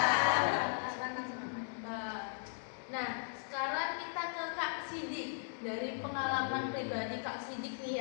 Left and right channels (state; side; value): silent; right; digital silence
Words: Nah, sekarang kita ke Kak Sidik. Dari pengalaman pribadi Kak Sidik nih